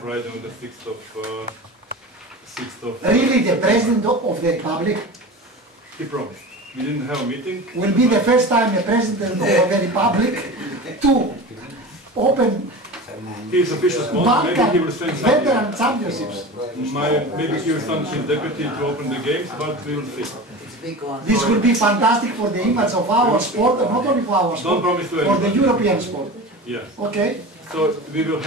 on the 6th of... Really, the President of the Republic? He promised. We didn't have a meeting. Will be the first time the President of the Republic to open His official sponsor, maybe he will send veteran championships. Maybe he will send his deputy to open the games, but we will see. This will be fantastic for the image of our sport, not only for our sport, for the European sport. Yes. Okay. So we will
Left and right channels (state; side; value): normal; both; correlation 0.31